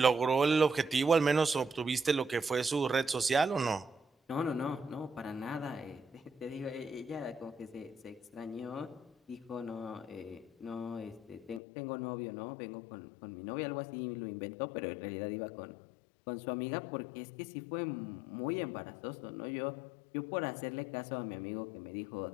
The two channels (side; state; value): right; drops out; at 11.6 s